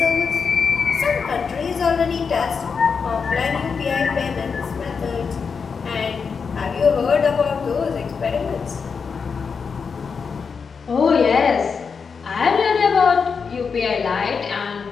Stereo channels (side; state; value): right; quieter; 5.7 dB